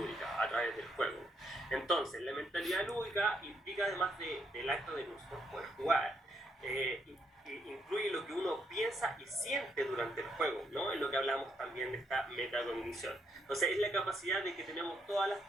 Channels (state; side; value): normal; both; correlation 0.75